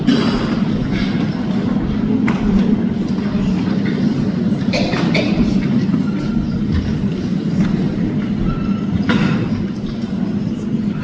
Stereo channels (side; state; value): both; identical; correlation 1.00